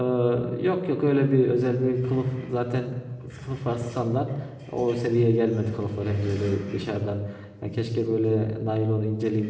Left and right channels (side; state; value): both; identical; correlation 1.00